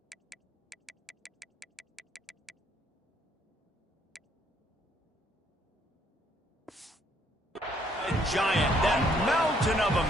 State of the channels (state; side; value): normal; both; correlation 0.67